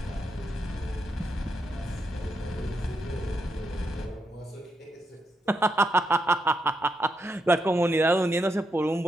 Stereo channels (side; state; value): both; normal; correlation 0.82